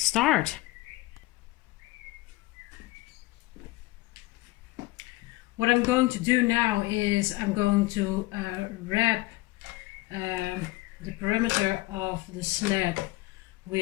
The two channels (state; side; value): quieter; right; 19.9 dB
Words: What I'm going to do now is I'm going to wrap the perimeter of the sled